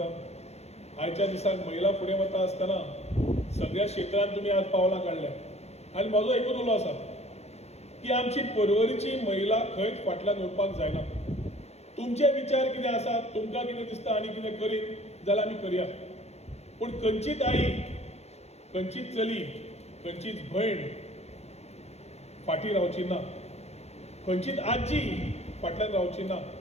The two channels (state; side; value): late; right; 0.31 ms